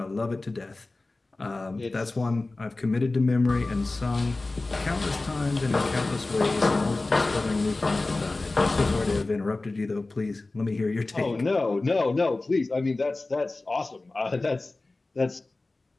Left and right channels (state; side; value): quieter; right; 3.2 dB